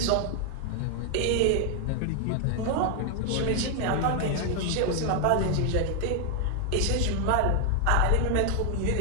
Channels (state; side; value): different; both; correlation 0.00